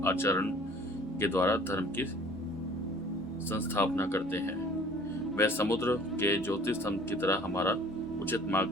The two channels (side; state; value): both; normal; correlation 0.51